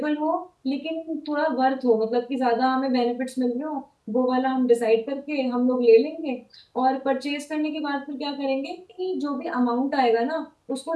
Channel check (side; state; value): both; identical; correlation 1.00